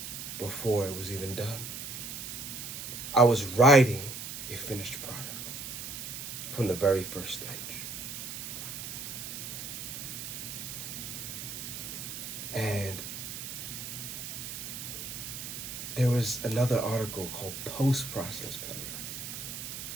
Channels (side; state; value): right; noise; hiss, 7 dB below the sound